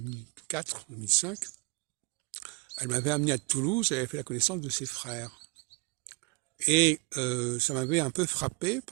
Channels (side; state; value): left; quieter; 28.2 dB